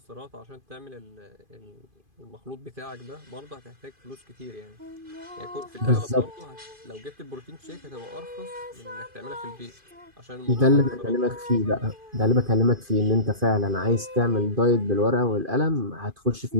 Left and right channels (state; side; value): late; left; 2.5 ms